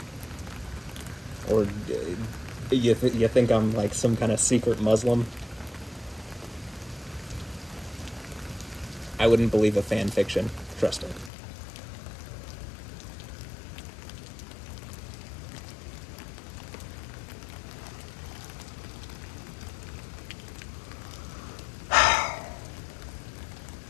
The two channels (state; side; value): drops out; right; at 11.3 s